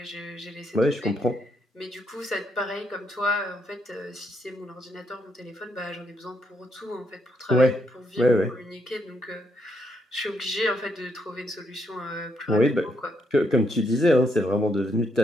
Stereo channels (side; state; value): both; normal; correlation 0.76